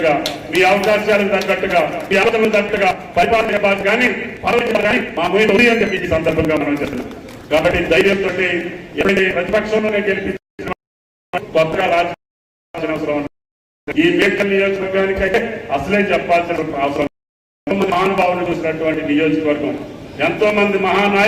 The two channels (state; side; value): identical; both; correlation 1.00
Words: మీ అవకాశాలకు తగ్గట్టుగా, మీ అవసరాలకు తగ్గట్టుగా పరిపాలన చెప్పాలి కానీ కానీ మా ముందు అని చెప్పి ఈ సందర్భంగా మనం చేస్తున్నాం. కాబట్టి ధైర్యంతో ఎప్పుడైతే ప్రతిపక్షంలోనే గెలిపించిన కొత్తగా రాజకీయ అవసరం ఈ మేడ్చల్ నియోజకవర్గానికైతే అసలే చెప్పాల్సిన అవసరం. మహానుభావులు చూసినటువంటి నియోజకవర్గం, ఎంతో మంది